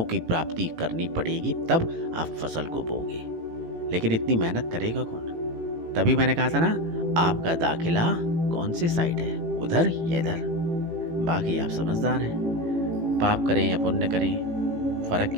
की प्राप्ति करनी पड़ेगी, तब आप फसल को बोगे। लेकिन इतनी मेहनत करेगा कौन? तभी मैंने कहा था ना, आपका दाखिला कौन से साइड है, उधर या इधर। बाकी आप समझदार हैं, पाप करें या पुण्य करें फर्क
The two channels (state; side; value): late; left; 18 ms